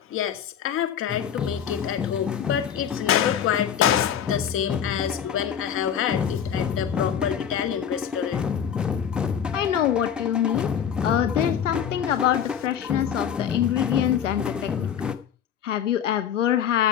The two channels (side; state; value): right; quieter; 8.7 dB